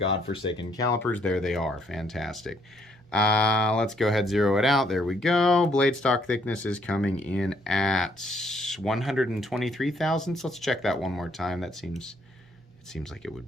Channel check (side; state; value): both; normal; correlation 0.68